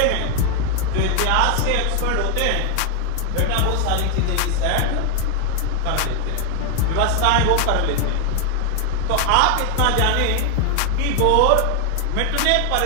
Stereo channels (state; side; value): different; both; correlation 0.00